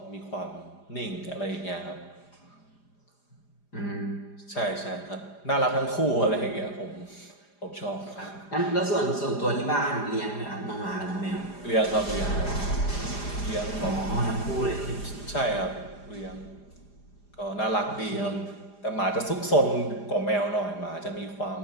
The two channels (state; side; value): late; right; 4.9 ms